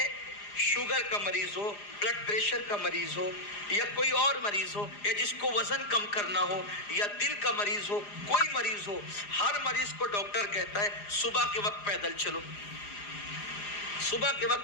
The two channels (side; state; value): right; late; 4.9 ms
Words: شوگر کا مریض ہو، بلڈ پریشر کا مریض ہو، یا کوئی اور مریض ہو، یا جس کو وزن کم کرنا ہو، یا دل کا مریض ہو، کوئی مریض ہو، ہر مریض کو ڈاکٹر کہتا ہے صبح کے وقت پیدل چلو، صبح کے